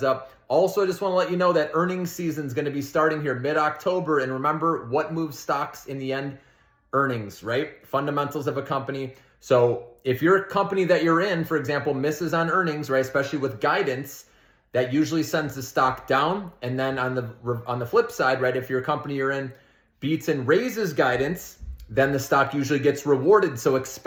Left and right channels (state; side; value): identical; both; correlation 1.00